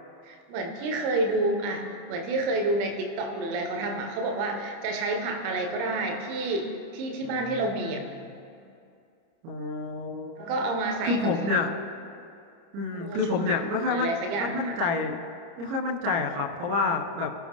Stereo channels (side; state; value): left; late; 30 ms